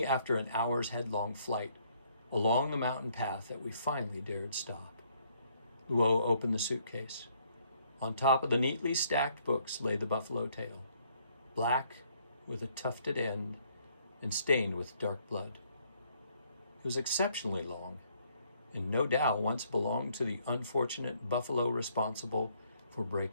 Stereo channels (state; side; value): inverted; both; correlation -0.68